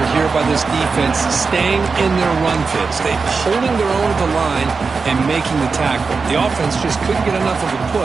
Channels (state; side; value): quieter; left; 4.7 dB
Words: here by this defense, staying in their run fits. They holding their own at the line and making the tackle. The offense just couldn't get enough of a